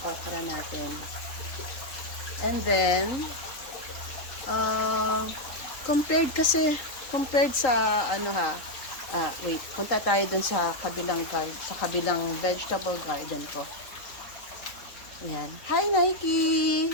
okra natin. And then, compared sa, wait, punta tayo dun sa kabilang vegetable garden ko. Ayan. Hi, Nike!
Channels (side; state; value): right; late; 3.8 ms